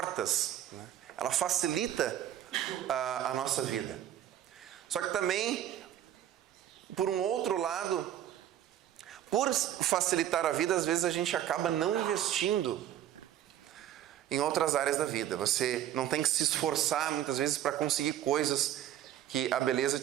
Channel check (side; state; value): left; quieter; 11.6 dB